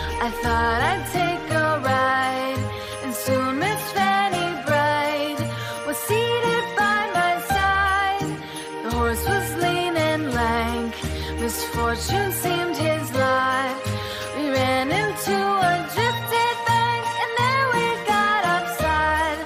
I thought I'd take a ride, and soon Miss Fanny Bright was seated by my side. The horse was lean and lank, misfortune seemed his lot. We ran into a drifted bank, and there we got upside.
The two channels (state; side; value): identical; both; correlation 1.00